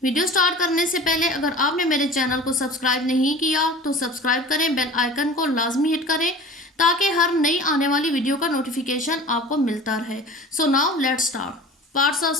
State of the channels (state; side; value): normal; both; correlation 0.40